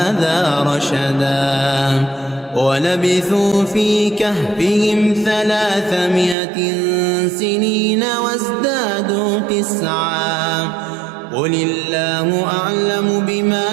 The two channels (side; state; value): left; drops out; at 6.4 s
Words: رشدا ولبثوا في كهفهم 300 سنين وازدادوا 9 قل الله أعلم بما